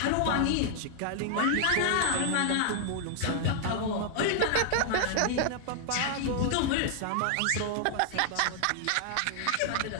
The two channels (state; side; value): different; both; correlation 0.00